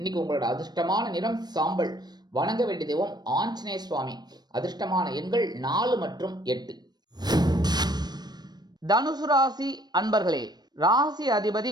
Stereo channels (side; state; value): left; late; 0.20 ms